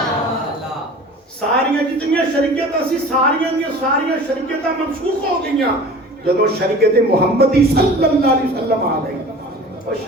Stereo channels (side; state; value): both; normal; correlation 0.41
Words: ساریاں جتنیاں شریعتاں سی ساریاں دیاں ساریاں شریعتاں منسوخ ہو گئیاں جدو شریعت محمدی صلی اللہ علیہ وسلم آ گئی. اور